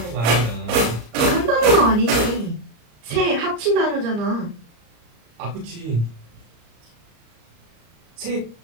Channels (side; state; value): left; late; 34 ms